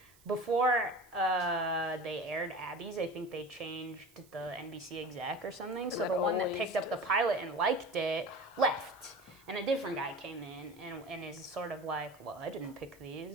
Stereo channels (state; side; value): noise; right; hiss, 27 dB below the sound